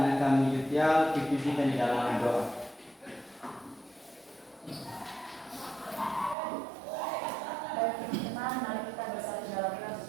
anak kami Yutial, pimpin di dalam doa. Mari kita bersatu dalam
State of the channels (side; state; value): left; drops out; at 6.4 s